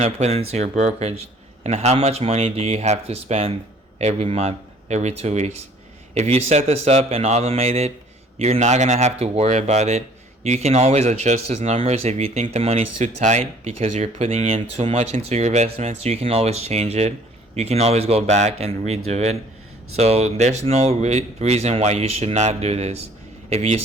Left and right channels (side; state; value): both; normal; correlation 0.56